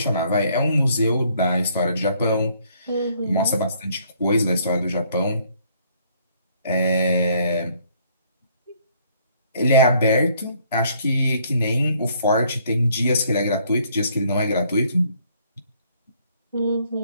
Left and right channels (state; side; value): inverted; both; correlation -0.65